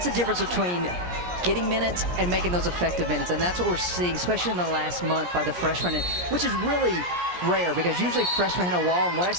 a difference between getting minutes and making those effective minutes, and that's what we're seeing, especially in the last month by the freshmen, which is really rare because usually freshmen hit a wall, and what I've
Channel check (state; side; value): late; left; 17 ms